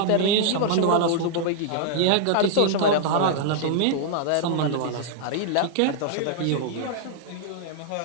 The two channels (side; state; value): both; different; correlation -0.01